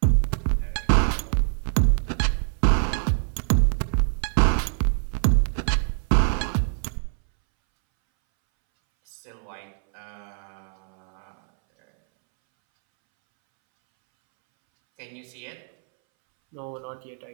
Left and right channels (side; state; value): left; silent; 62 dB below the other